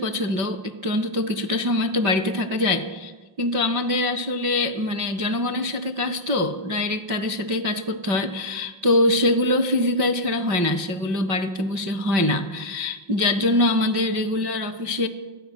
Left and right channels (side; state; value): left; late; 5.6 ms